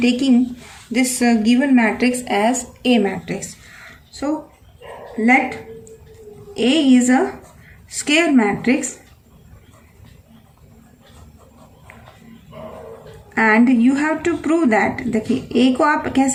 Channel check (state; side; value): identical; both; correlation 1.00